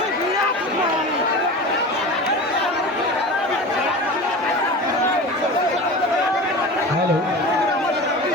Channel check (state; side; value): normal; both; correlation 0.32